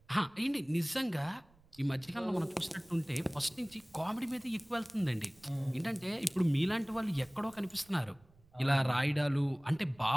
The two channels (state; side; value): noise; right; rumble, 29 dB below the sound